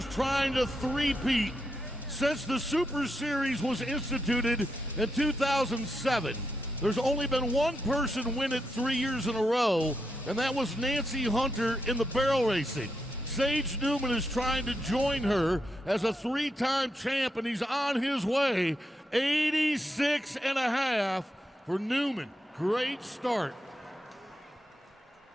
trying to three-peat. Since the Super Series was instituted in 2007, there's only been one person win it 3 years in a row, and that was Nancy Hunter in the barrel racing. Sage Newman is trying to join her as a 3-time champ, and he's on his way. 86.5 for Newman. Great start.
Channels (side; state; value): both; normal; correlation 0.84